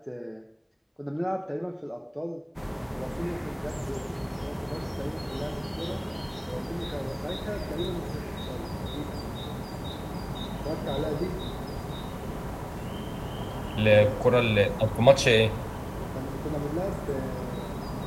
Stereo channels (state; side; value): identical; both; correlation 1.00